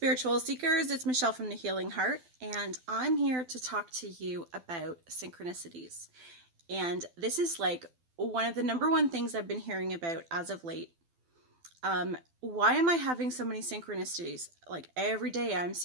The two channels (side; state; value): left; late; 12 ms